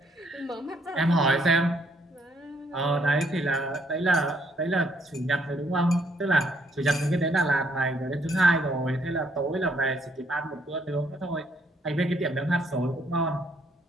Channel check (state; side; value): normal; both; correlation 0.69